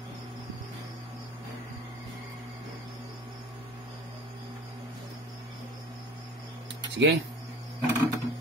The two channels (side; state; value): both; normal; correlation 0.41